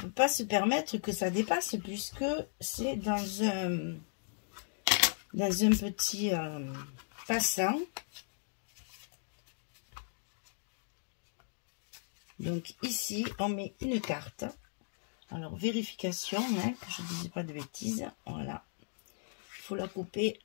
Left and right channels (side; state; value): right; silent; digital silence